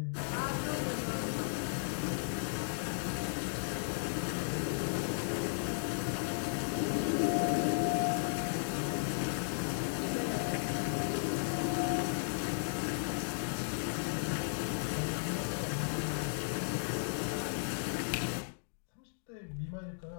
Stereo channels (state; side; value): silent; right; digital silence